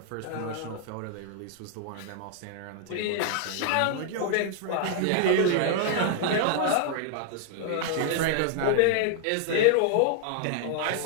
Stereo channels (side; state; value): both; different; correlation -0.01